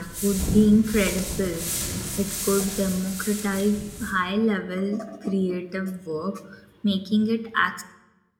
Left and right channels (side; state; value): both; identical; correlation 1.00